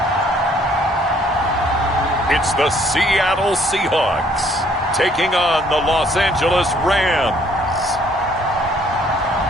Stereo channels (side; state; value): both; normal; correlation 0.63